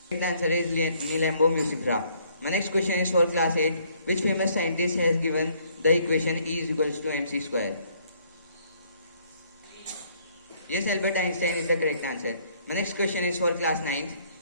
Correct answer is Nilambo musifera. My next question is for class 8. Which famous scientist has given the equation E is equals to mc square? Yes, Albert Einstein is the correct answer. My next question is for class 9th.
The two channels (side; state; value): both; inverted; correlation -0.65